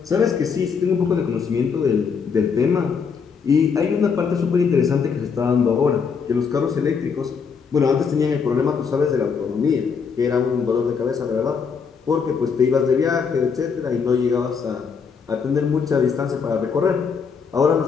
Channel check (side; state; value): right; quieter; 6.0 dB